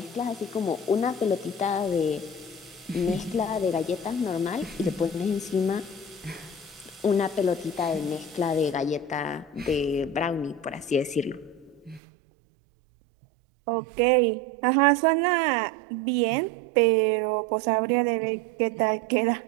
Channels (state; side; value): drops out; left; at 12.0 s